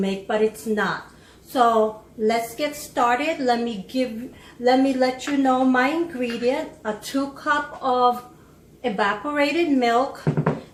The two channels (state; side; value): identical; both; correlation 1.00